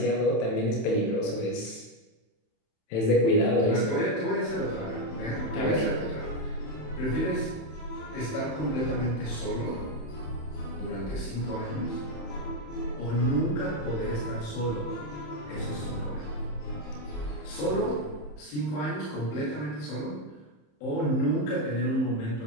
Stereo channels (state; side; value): late; right; 27 ms